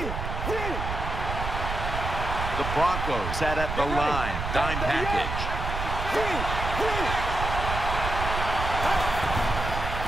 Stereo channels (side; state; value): right; noise; rumble, 4 dB below the sound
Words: The Broncos set at the line. Dime package.